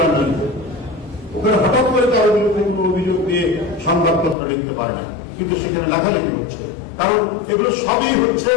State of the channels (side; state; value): right; drops out; at 4.4 s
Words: ওখানে হঠাৎ করে তার বিরুদ্ধে কোনো অভিযোগ দিয়ে সংবাদপত্র লিখতে পারে না, কিন্তু সেখানে লেখালেখি হচ্ছে। কারণ এগুলো সবই হচ্ছে